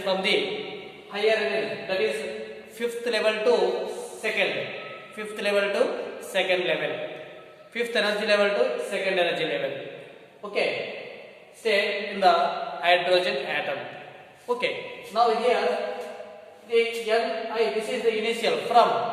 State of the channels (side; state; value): both; identical; correlation 1.00